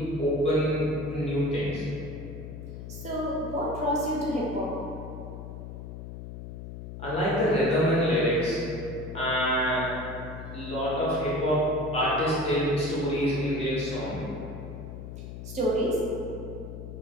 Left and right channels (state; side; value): noise; left; hum, 10 dB below the sound